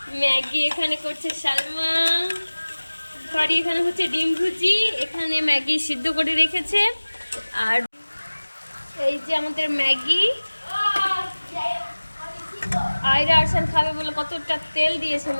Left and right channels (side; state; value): both; inverted; correlation -1.00